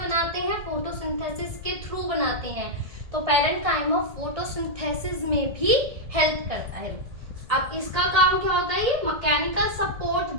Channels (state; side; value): late; left; 1.6 ms